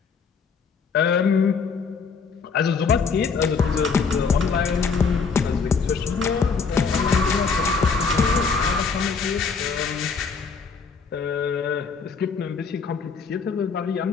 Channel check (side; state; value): right; quieter; 5.4 dB